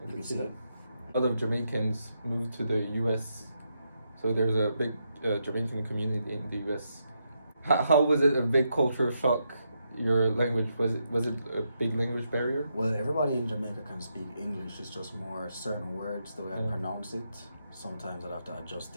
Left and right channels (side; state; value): both; inverted; correlation -0.82